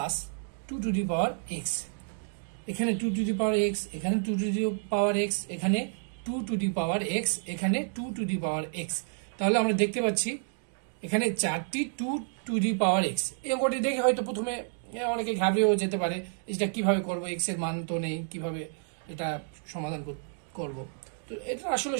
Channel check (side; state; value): left; silent; 58 dB below the other